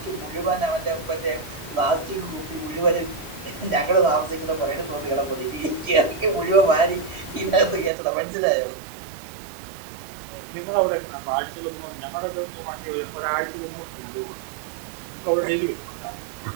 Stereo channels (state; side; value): drops out; left; at 7.9 s